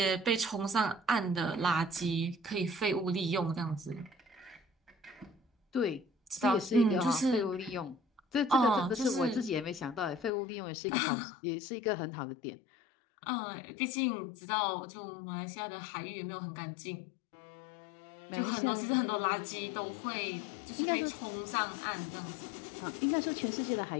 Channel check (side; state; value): right; drops out; at 10.3 s